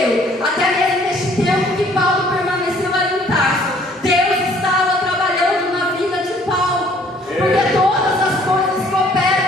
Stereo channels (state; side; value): normal; both; correlation 0.58